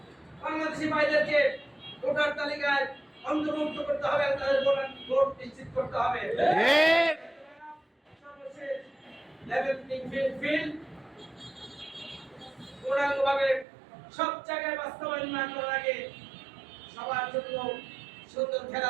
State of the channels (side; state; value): left; drops out; at 13.7 s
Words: বাংলাদেশি ভাইদেরকে ভোটার তালিকায় অন্তর্ভুক্ত করতে হবে, তাদের ভোট নিশ্চিত করতে হবে। সর্বশেষ লেভেল প্লেইং ফিল্ড পূর্ণাঙ্গভাবে সব জায়গায় বাস্তবায়ন না করার আগে সবার জন্য সুন্দর